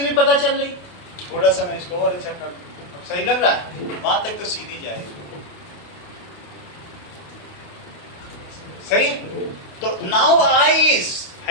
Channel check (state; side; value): late; right; 28 ms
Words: पता चल रही। थोड़ा सा मैं इसको और अच्छा कर दूं, अब सही लग रहा है? वहां तक तो सीधी जाएगी। सही है? तो now I is